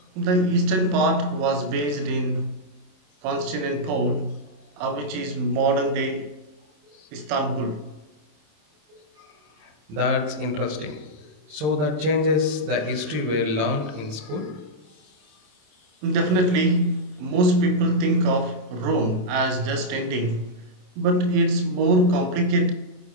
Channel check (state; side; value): late; left; 27 ms